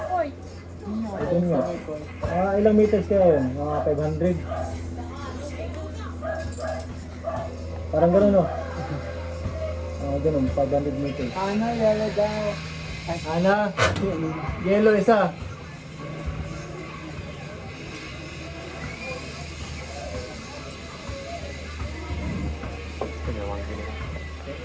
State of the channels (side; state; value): both; identical; correlation 1.00